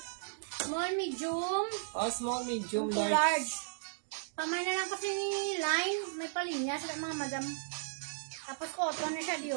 Small, medium, Oh, small, medium, to large. large. Pamay na lang kasi ni line, may palinya sa mga madam. Tapos cotton na siya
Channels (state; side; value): silent; left; digital silence